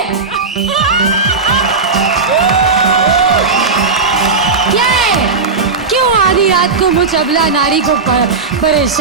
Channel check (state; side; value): quieter; left; 4.4 dB